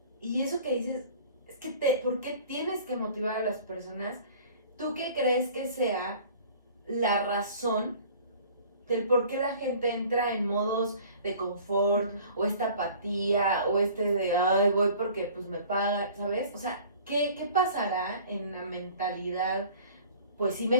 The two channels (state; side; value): inverted; both; correlation -0.48